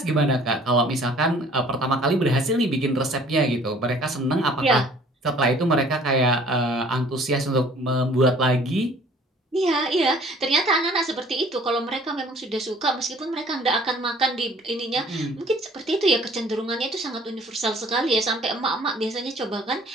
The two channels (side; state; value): both; normal; correlation 0.54